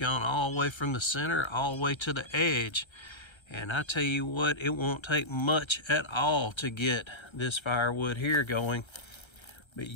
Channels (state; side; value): late; right; 1.3 ms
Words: all the way from the center all the way to the edge. And I tell you what, it won't take much at all to get this firewood here going. But